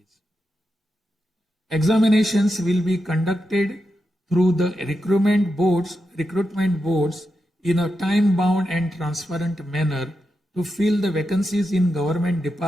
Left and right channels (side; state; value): both; normal; correlation 0.88